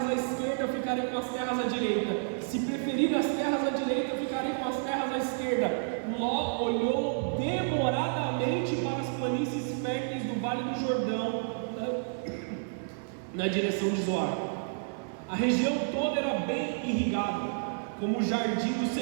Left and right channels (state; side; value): silent; left; 58 dB below the other